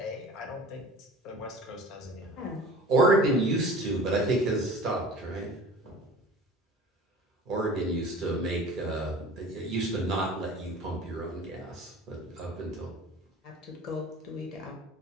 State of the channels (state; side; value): normal; both; correlation 0.42